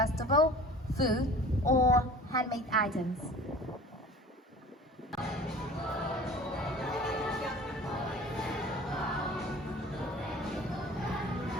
food, or handmade items.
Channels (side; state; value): both; normal; correlation 0.43